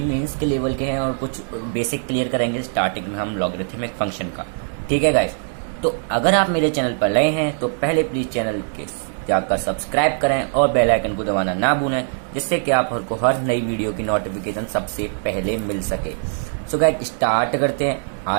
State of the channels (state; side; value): silent; left; digital silence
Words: मेंस के लेवल के हैं, और कुछ बेसिक क्लियर करेंगे स्टार्टिंग में हम लॉगरिथमिक फंक्शन का। ठीक है गाइस, तो अगर आप मेरे चैनल पर नए हैं तो पहले प्लीज चैनल के जाकर सब्सक्राइब करें और बेल आइकन को दबाना ना भूलें, जिससे कि आपको हर नई वीडियो की नोटिफिकेशन सबसे पहले मिल सके। सो गाइस, स्टार्ट करते हैं